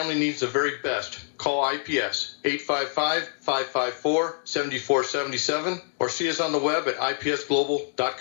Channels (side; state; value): right; silent; digital silence